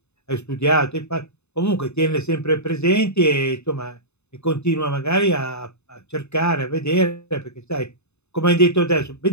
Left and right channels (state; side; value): late; right; 0.81 ms